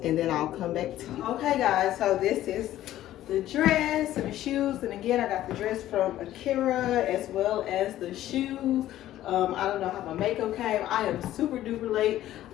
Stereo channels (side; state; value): right; quieter; 13.5 dB